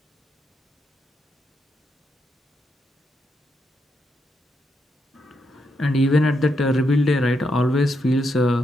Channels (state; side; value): normal; both; correlation 0.81